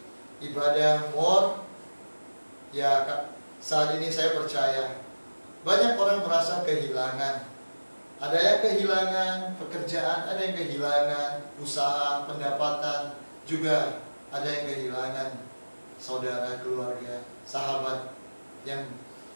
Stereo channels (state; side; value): inverted; both; correlation -1.00